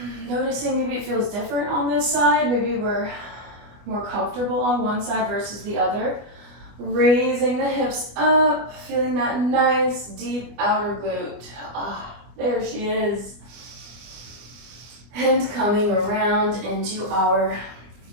Noticing maybe it feels different on this side. Maybe we're more comfortable on one side versus the other. Raising the hips up, feeling that nice deep outer glute. There she is. And coming around into our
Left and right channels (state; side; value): late; left; 25 ms